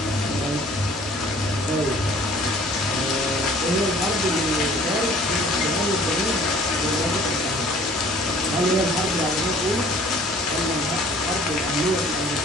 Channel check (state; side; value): normal; both; correlation 0.52